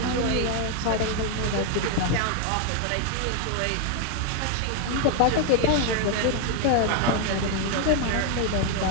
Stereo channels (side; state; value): both; different; correlation 0.01